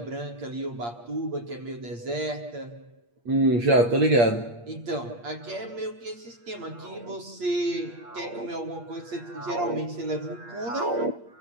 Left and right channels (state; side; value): late; left; 8.5 ms